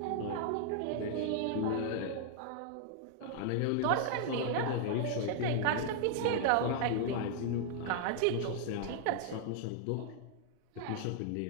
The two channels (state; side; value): different; both; correlation -0.01